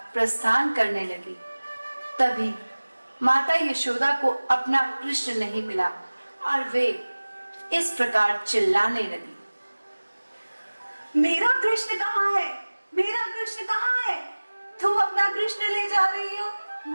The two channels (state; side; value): inverted; both; correlation -1.00